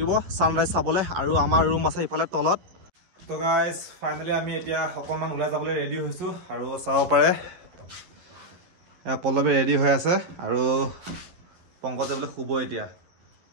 ছানৰাইজ চাবলৈ আৰু আমাৰ ৰুম আছে ইফালে তলত। তো গাইজ ফাইনেলি আমি এতিয়া অকণমান ওলাই যাবলৈ ৰেডি হৈছোঁ আৰু চাব পাৰে পল্লৱী ৰেডি হৈ আছে আৰু পংকজ যাবলৈ শুব এতিয়া।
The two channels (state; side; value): late; left; 11 ms